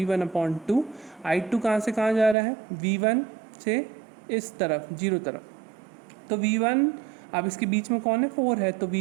I2 कहाँ से कहाँ जा रहा है, V1 से इस तरफ 0 तरफ, तो V1 अब इसके बीच में कौन है, 4 है, तो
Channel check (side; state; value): left; drops out; at 2.4 s